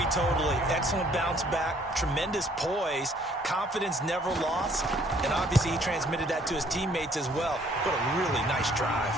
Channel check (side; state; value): both; normal; correlation 0.61